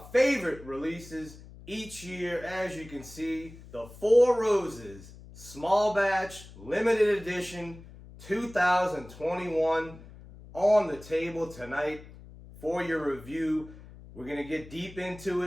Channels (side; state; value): left; noise; hum, 18 dB below the sound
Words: favorite releases each year, as you can see, the Four Roses Small Batch Limited Edition 2021 on the table tonight for your review. We're going to get deep into